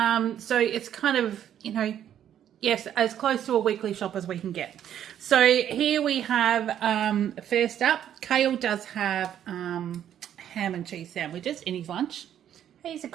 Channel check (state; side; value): quieter; left; 10.3 dB